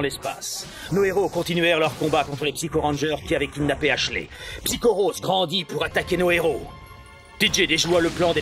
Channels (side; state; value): both; identical; correlation 1.00